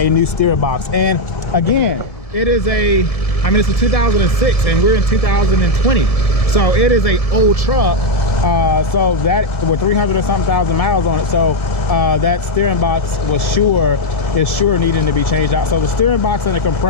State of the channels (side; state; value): right; late; 1.7 ms